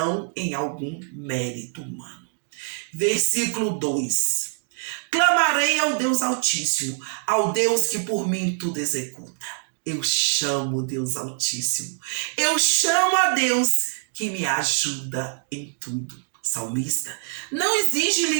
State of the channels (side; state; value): left; silent; 56 dB below the other